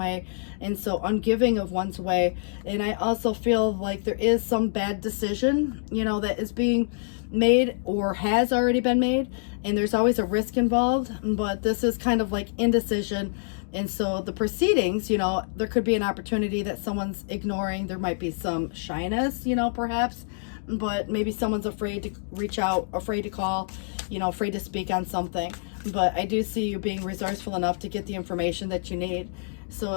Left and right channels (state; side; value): silent; right; digital silence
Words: and so ungiving of one's way. And I also feel like there is some bad decision, that is being made or has already been made, and there's always a risk involved, but this is kind of like indecision. And so the proceedings, there could be an opportunity that someone's ignoring. There might be some shyness, perhaps, but maybe someone's afraid to reach out, afraid to call, afraid to speak on something. But I do see you being resourceful enough to get the information that you need. So